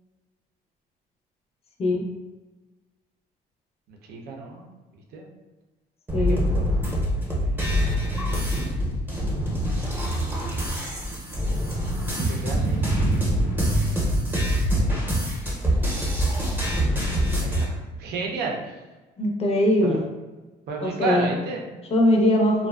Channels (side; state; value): both; normal; correlation 0.64